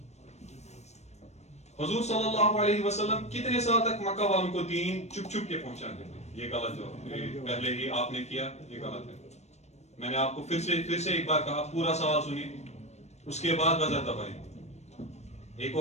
حضور صلی اللہ علیہ وسلم کتنے سال تک مکہ والوں کو دین چپ چپ کے پہنچاتے تھے؟ یہ غلط جواب, یہ پہلے ہی آپ نے کیا, یہ غلط ہے. میں نے آپ کو پھر سے ایک بار کہا, پورا سوال سنیے, اس کے بعد بزر دبائیں. ایک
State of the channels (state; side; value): late; right; 0.32 ms